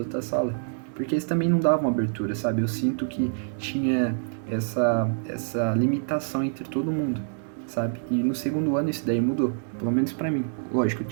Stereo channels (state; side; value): silent; left; digital silence